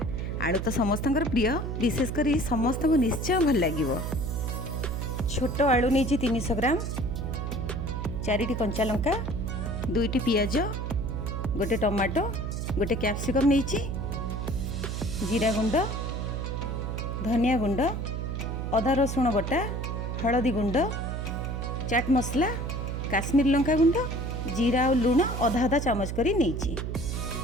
आलू तो समस्त प्रिय, विशेषकर समस्त को निश्चय भल लगे। छोट आलू नहीं 300 ग्राम, 4टी कंचा लंका, 2टी पियाज, गोटे टमाटो, गोटे कैप्सिकम नहीं, जीरा गुंड, धनिया गुंड, अदा रसुण बटा, हलदी गुंड, चाट मसला, काश्मीर लंका गुंड, जीरा और लुण अधा अधा चामच करी नहीं,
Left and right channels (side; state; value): right; noise; hum, 3 dB below the sound